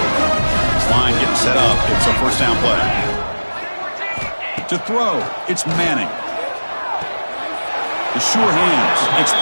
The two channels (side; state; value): both; inverted; correlation -1.00